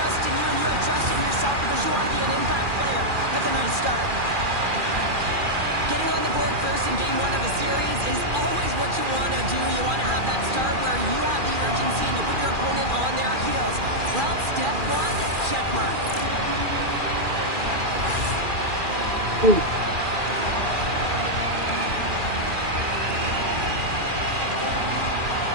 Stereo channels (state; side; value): late; left; 2.4 ms